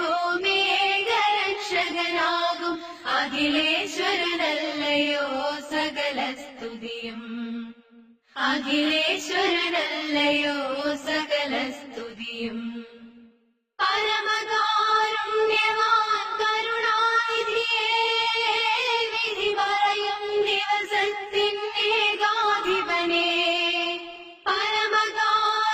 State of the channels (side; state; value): both; identical; correlation 1.00